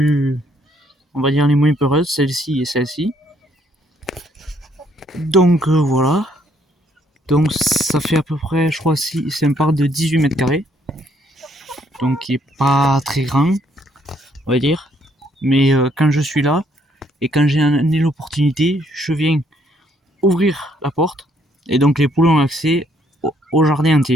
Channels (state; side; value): normal; both; correlation 0.69